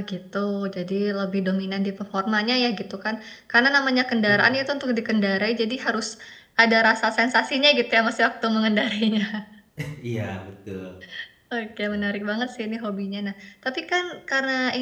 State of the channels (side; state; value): both; identical; correlation 1.00